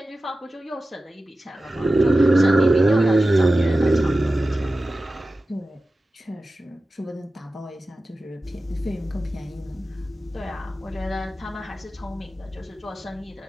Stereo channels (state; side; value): normal; both; correlation 0.94